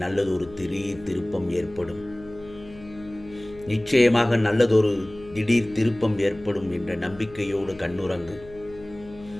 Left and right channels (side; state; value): left; noise; hum, 19 dB below the sound